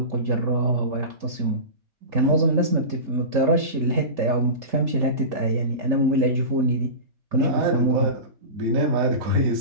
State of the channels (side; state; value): left; late; 3.4 ms